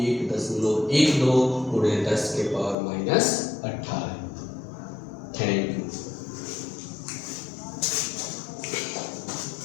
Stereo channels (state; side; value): drops out; right; at 2.8 s